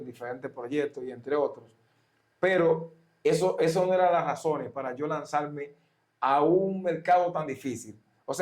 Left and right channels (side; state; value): both; identical; correlation 1.00